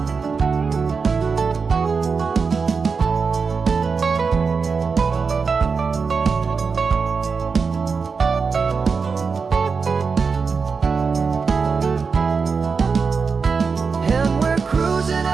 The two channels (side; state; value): left; quieter; 5.2 dB